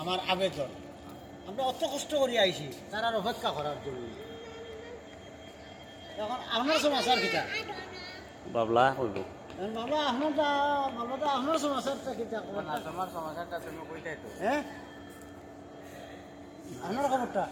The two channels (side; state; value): both; identical; correlation 1.00